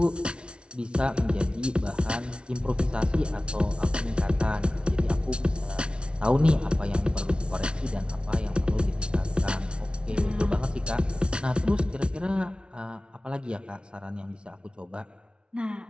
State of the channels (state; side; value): late; left; 0.058 ms